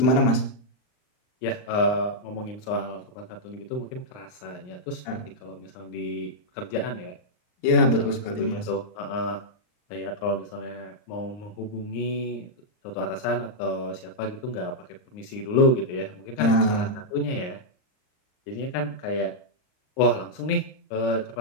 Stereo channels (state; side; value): late; right; 39 ms